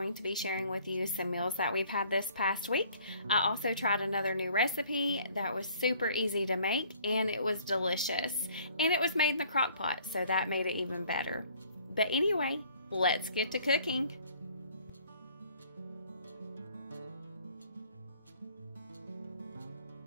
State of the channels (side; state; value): both; inverted; correlation -0.56